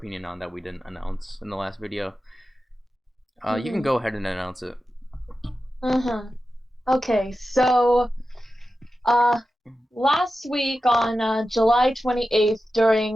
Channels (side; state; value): both; normal; correlation 0.92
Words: on that we didn't announce in the last video. You can hmm go ahead and announce it. hmm Okay, so uh last week on July 28th